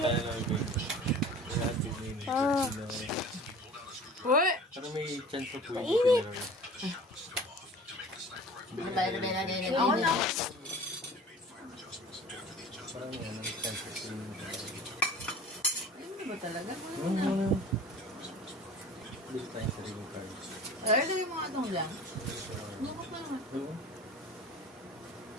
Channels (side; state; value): both; normal; correlation 0.41